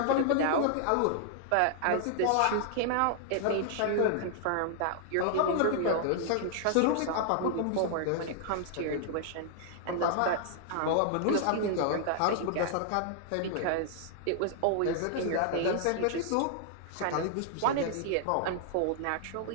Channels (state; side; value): different; both; correlation -0.01